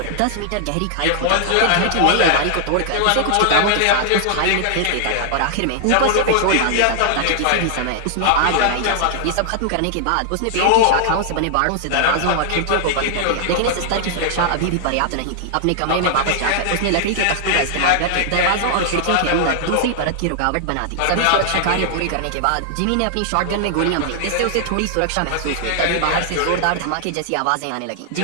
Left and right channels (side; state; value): both; different; correlation -0.01